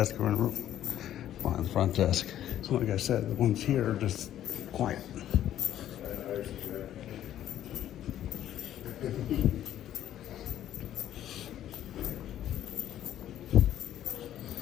or in the room behind the front desk. So like I said, the ones here are just quiet.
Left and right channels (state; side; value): quieter; right; 11.7 dB